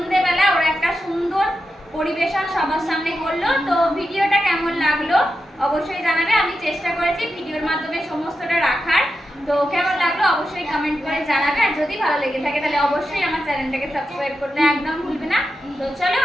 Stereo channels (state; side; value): normal; both; correlation 0.89